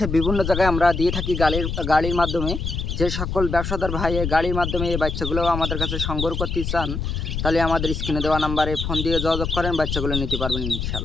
বিভিন্ন জায়গায় আমরা দিয়ে থাকি গাড়ির মাধ্যমে। যে সকল ব্যবসাদার ভাই গাড়ির মাধ্যমে এই বাচ্চাগুলো আমাদের কাছে সংগ্রহ করতে চান তাহলে আমাদের স্ক্রিনে দেওয়া নাম্বারে ফোন দিয়ে যোগাযোগ করেন, বাচ্চাগুলো নিতে পারবেন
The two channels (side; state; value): left; noise; rumble, 3 dB below the sound